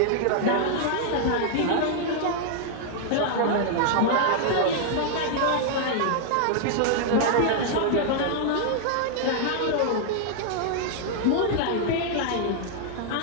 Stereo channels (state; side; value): different; both; correlation -0.01